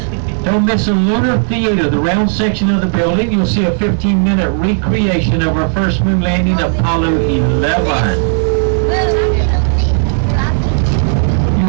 Don't miss a lunar theater, the round section of the building. You'll see a 15-minute recreation of our first moon landing, Apollo 11.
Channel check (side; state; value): left; silent; digital silence